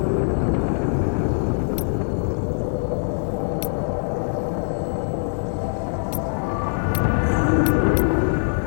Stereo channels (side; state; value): right; silent; digital silence